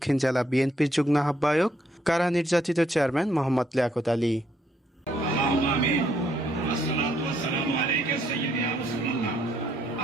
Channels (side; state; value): both; normal; correlation 0.71